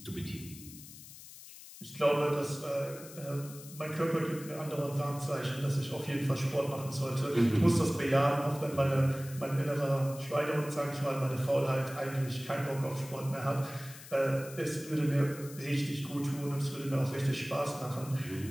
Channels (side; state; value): left; noise; hiss, 16 dB below the sound